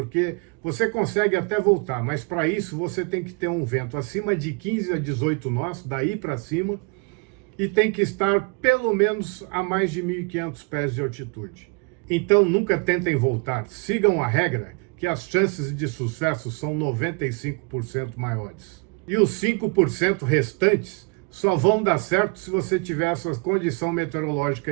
você consegue até voltar, mas para isso você tem que ter um vento acima de 15 a 18 nós, daí para cima, e tem que estar pelo menos a mais de 1.500 pés de altitude. Então nunca tentem voltar, sigam a regra, que as chances de sucesso são 95% maiores. E os 5% restantes só vão dar certo se você tiver essa condição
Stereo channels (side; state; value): left; quieter; 32.3 dB